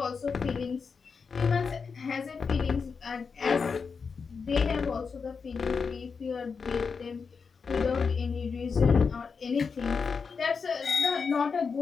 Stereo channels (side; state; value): right; quieter; 5.4 dB